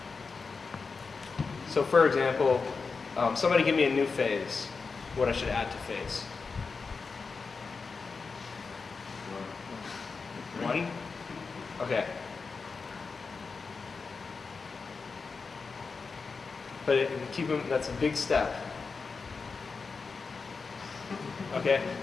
So for example, somebody give me a new phase, what I should add to phase. 1? Okay. But keep them, that's a big step. Okay,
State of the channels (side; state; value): right; quieter; 4.7 dB